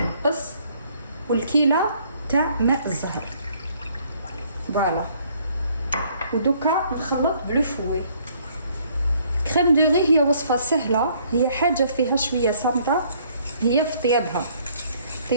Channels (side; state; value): both; inverted; correlation -0.63